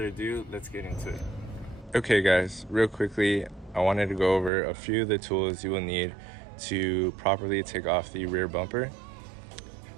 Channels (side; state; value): left; drops out; at 4.5 s